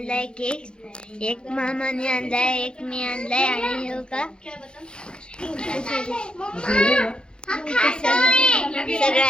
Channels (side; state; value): right; late; 0.050 ms